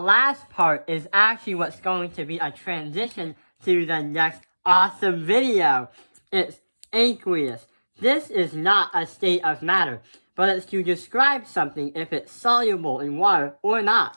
part is actually what's going to be a transition to the next awesome video. It's aqueous. This is not a state of matter, but it's to describe something if it's soluble in water or not.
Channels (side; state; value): both; inverted; correlation -1.00